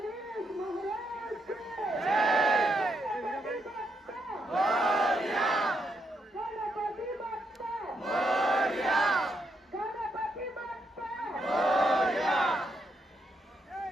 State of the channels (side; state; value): both; normal; correlation 0.79